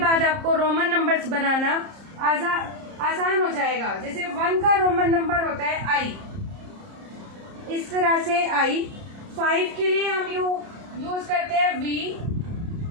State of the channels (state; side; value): late; left; 30 ms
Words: आपको रोमन नंबर्स बनाना आसान हो जाएगा। जैसे 1 का रोमन नंबर होता है आई, इस तरह से आई। 5 के लिए हम यूज करते हैं वी,